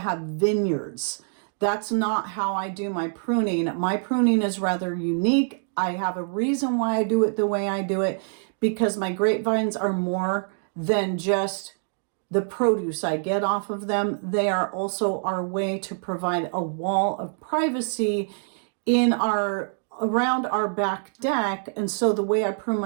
vineyards. That's not how I do my pruning. My pruning is rather unique. I have a reason why I do it the way I do it, because my grapevines are more than just the produce I get off of them. They are also our way to provide a wall of privacy around our back deck. And so the way I prune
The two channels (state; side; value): silent; left; digital silence